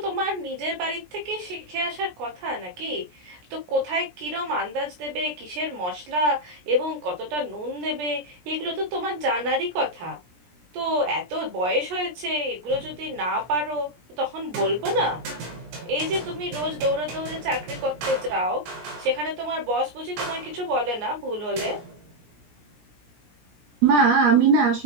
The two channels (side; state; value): left; late; 17 ms